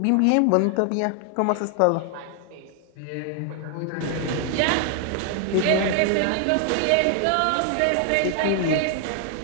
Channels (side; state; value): both; different; correlation 0.00